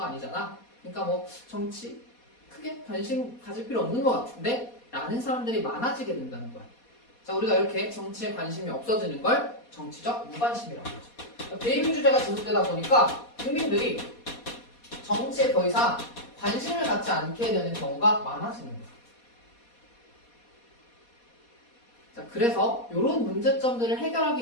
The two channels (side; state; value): right; late; 4.2 ms